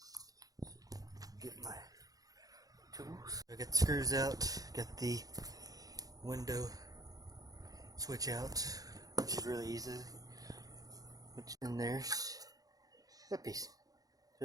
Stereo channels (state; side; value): late; left; 0.18 ms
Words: Get my tools. I got the screws out, got the window switch out, which is really easy. And there's that piece.